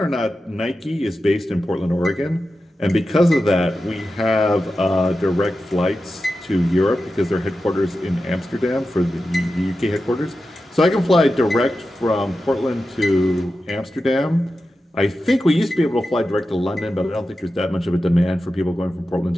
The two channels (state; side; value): normal; both; correlation 0.92